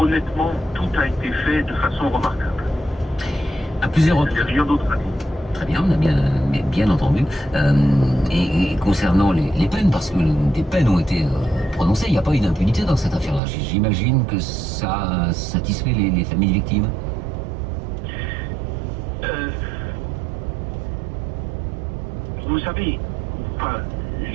tout a été fait de façon remarquable. À plusieurs Il n'y a reprises. rien d'autre à dire. Très bien, on a bien entendu. Et concernant les peines, parce que des peines ont été prononcées, il n'y a pas eu d'impunité dans cette affaire-là. J'imagine que ça satisfait les familles victimes. Vous savez, enfin,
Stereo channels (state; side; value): drops out; left; at 13.4 s